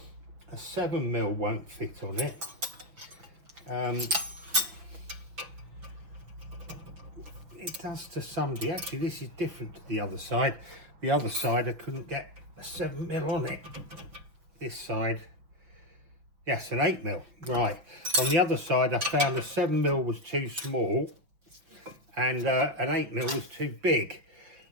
A 7mm won't fit on it. It does to somebody. Actually, this is different to the other side. The other side I couldn't get a 7mm on it. This side, yes, an 8mm. Right. On the other side, I found a 7mm was too small, and an 8mm was too big.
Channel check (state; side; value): late; left; 6.0 ms